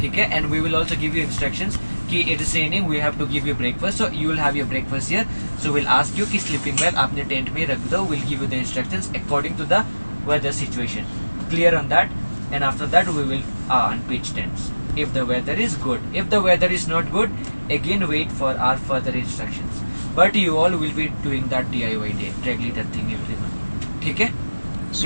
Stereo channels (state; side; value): inverted; both; correlation -1.00